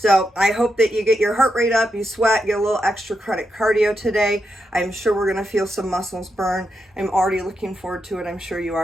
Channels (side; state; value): both; normal; correlation 0.84